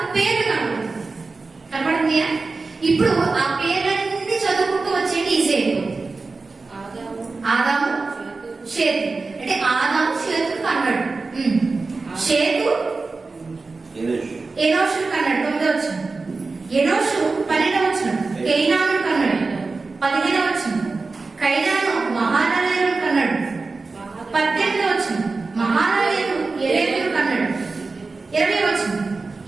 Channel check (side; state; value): left; quieter; 3.9 dB